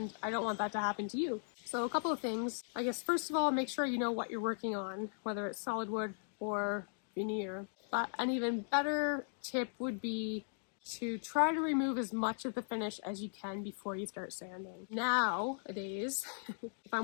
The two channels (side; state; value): right; silent; digital silence